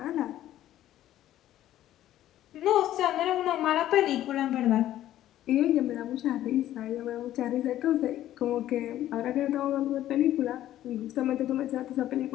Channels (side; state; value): right; quieter; 13.0 dB